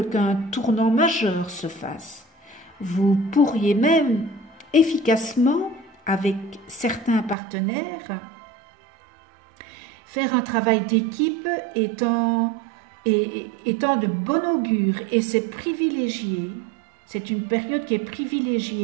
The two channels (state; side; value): drops out; left; at 7.4 s